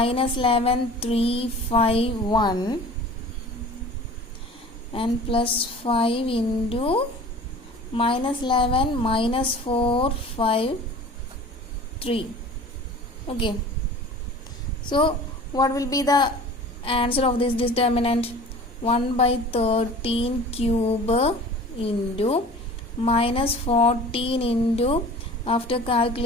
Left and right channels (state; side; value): normal; both; correlation 0.42